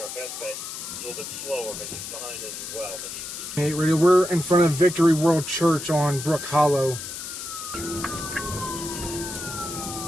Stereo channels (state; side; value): noise; left; hiss, 8 dB below the sound